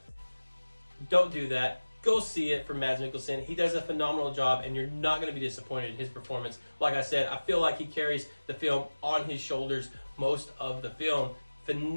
don't do that. Go see it for Mads Mikkelsen. He does a phenomenal job, and you're not going to be disappointed in his performance. Like I said, I feel like he carries the film on his shoulders most of the film.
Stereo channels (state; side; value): inverted; both; correlation -1.00